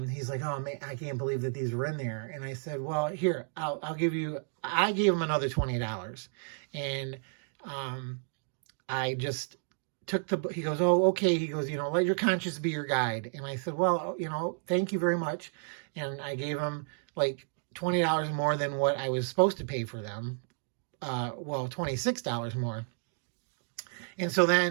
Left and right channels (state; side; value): silent; left; 57 dB below the other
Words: he's like, oh man, I can't believe that these were in there. And I said, well, here, I'll give you, I gave him another $20. And I just took he goes, oh, okay. He goes, you know, let your conscience be your guide. And I said, well, you know, thank you very much. And I gave him like $20 more than what I was supposed to pay for them. Well, $26 more. And so